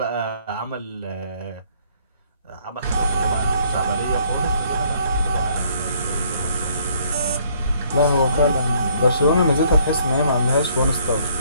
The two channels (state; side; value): inverted; both; correlation -0.63